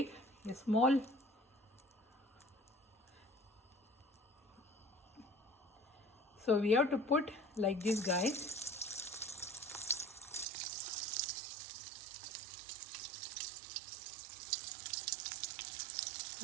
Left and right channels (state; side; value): drops out; left; at 10.5 s